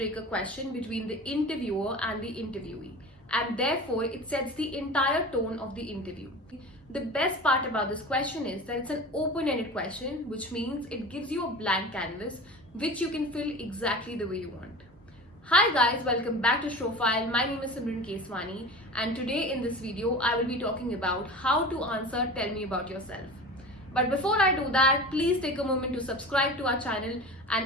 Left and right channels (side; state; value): both; normal; correlation 0.34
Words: question between the interviewer and the interviewee, and therefore it sets the entire tone of the interview. The best part about this question is that it's an open ended question, which means it gives you a blank canvas which you can fill exactly the way you want. Hi guys, welcome back to Showfile. My name is Simran Keswani, and today in this video I will be talking about how to answer Tell Me About Yourself. But before I do that, please take a moment to subscribe to our channel